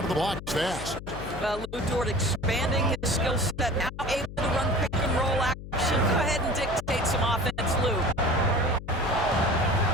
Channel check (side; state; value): left; noise; hum, 12 dB below the sound